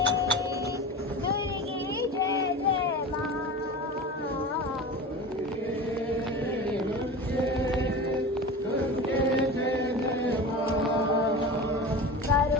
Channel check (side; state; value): both; normal; correlation 0.31